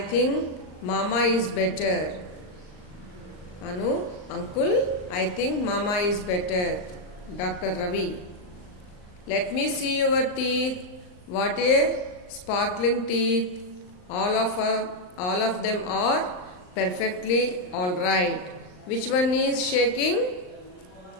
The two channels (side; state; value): right; late; 39 ms